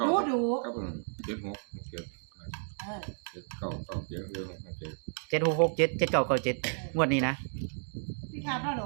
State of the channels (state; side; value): silent; left; digital silence